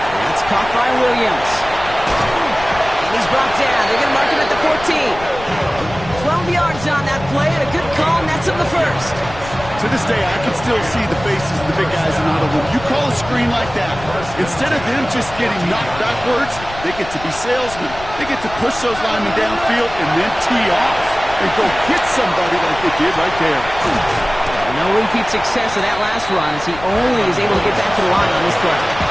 That's caught by Williams. And he's brought down. They're going to mark him at the 14. 12 yards on that play, and a good call, and that's him the first. To this day, I can still see the faces of the big guys in Ottawa. You call a screen like that, instead of them just getting knocked backwards, they get to be salesmen. They get to push those linemen downfield and then tee off and go hit somebody like they did right there. No repeat success of that last run as he only is able to get back to the line on this play.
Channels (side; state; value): left; noise; rumble, 14 dB below the sound